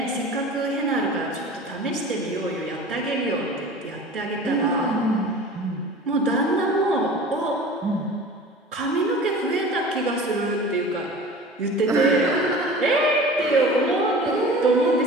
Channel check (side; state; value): both; normal; correlation 0.40